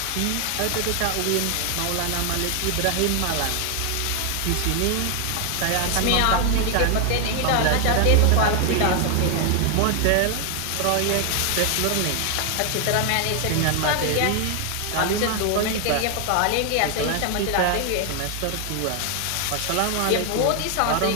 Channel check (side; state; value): both; different; correlation 0.00